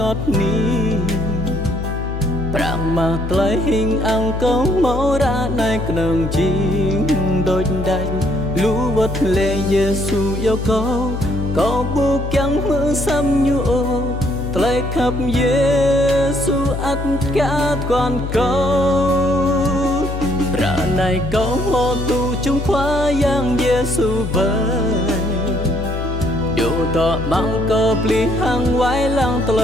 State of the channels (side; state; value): left; noise; hum, 5 dB below the sound